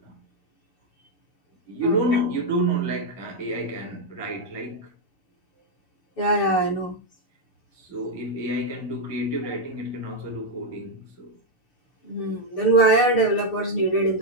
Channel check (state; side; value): late; right; 6.8 ms